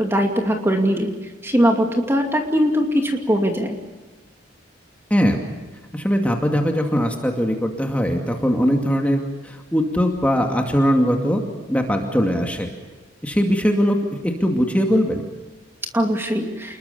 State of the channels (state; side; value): normal; both; correlation 0.86